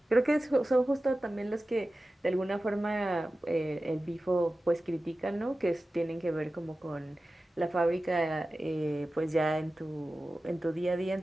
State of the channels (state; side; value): normal; both; correlation 0.95